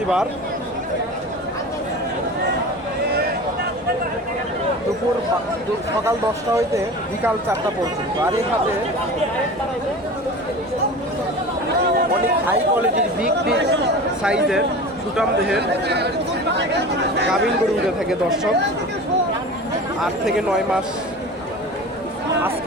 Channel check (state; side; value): normal; both; correlation 0.35